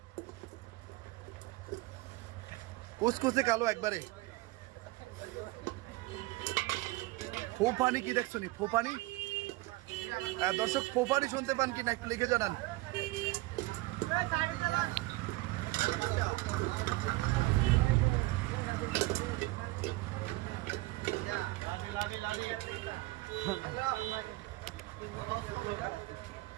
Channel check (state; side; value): quieter; left; 20.4 dB